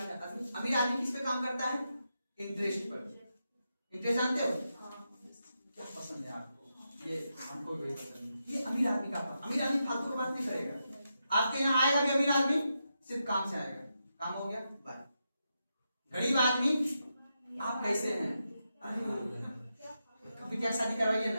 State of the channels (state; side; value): inverted; both; correlation -0.86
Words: करता है। अमीर आदमी किस पे काम करता है? इंटरेस्ट पर। इंटरेस्ट जानते हो क्या पसंद है आपको? ये हमको भी पसंद है, ये अमीर आदमी का पास। अमीर आदमी फालतू की बात नहीं करेगा, आपके यहाँ आएगा भी अमीर आदमी सिर्फ काम से आएगा, काम हो गया बाय। गरीब आदमी आप कैसे हैं, कभी क्या शादी करवाइए